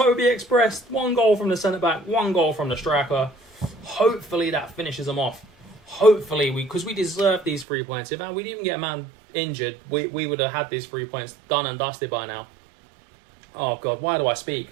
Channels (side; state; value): left; drops out; at 7.7 s